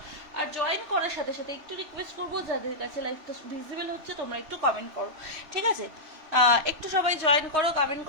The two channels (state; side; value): late; left; 3.0 ms